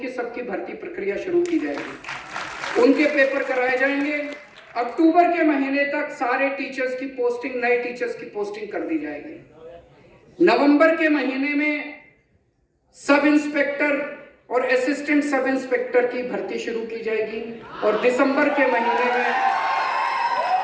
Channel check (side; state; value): both; identical; correlation 1.00